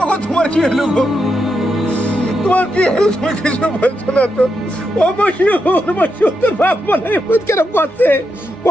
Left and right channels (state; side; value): normal; both; correlation 0.84